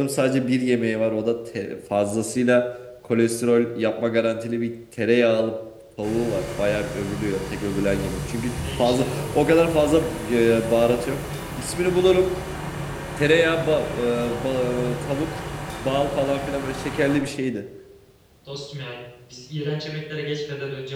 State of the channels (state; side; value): identical; both; correlation 1.00